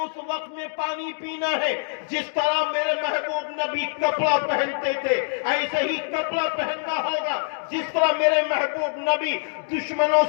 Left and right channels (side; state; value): right; silent; digital silence